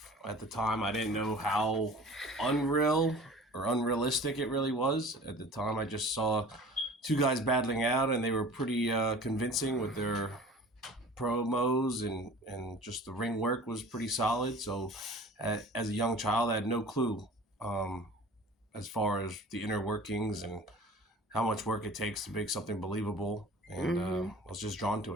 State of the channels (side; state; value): both; normal; correlation 0.43